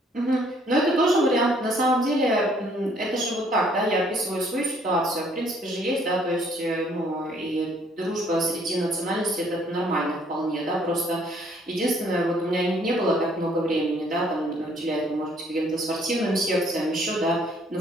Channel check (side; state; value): both; normal; correlation 0.63